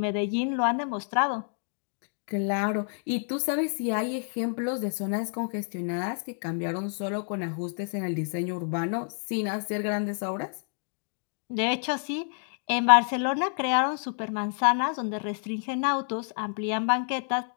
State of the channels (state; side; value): silent; right; 58 dB below the other